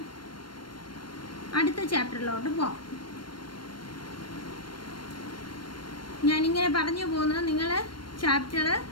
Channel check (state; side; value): late; right; 0.72 ms